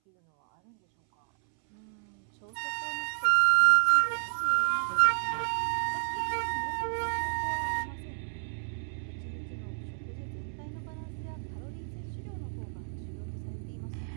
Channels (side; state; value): left; silent; 57 dB below the other